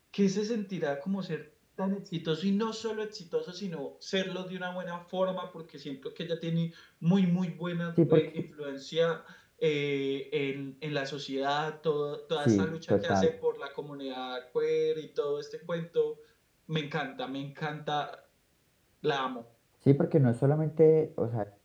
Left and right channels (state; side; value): identical; both; correlation 1.00